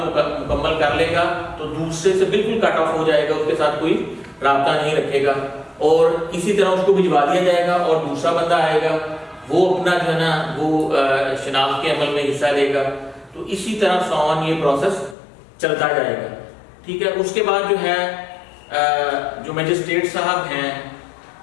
मुकम्मल कर लेगा तो दूसरे से बिल्कुल कट ऑफ हो जाएगा, उसके साथ कोई राब्ता नहीं रखेगा और इसी तरह उसको भिजवा दिया जाएगा और दूसरा बंदा आएगा, वो अपना जो है ना वो शनाख्त के अमल में हिस्सा लेगा। तो इसी तरह सॉन ये प्रोसेस चलता जाएगा। ठीक है। उसके बाद जो है जो मजिस्ट्रेट साहब हैं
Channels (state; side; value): drops out; right; at 15.2 s